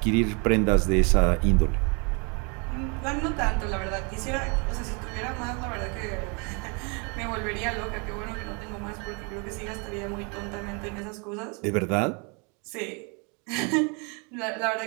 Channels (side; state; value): left; quieter; 33.3 dB